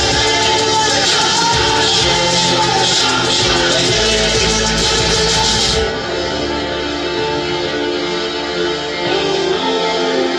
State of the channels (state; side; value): identical; both; correlation 1.00